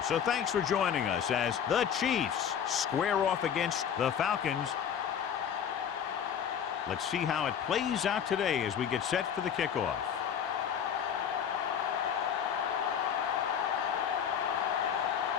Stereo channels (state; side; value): quieter; right; 8.3 dB